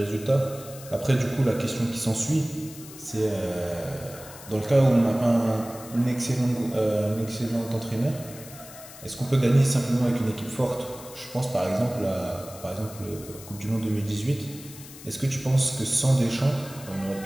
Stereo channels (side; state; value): left; noise; hiss, 16 dB below the sound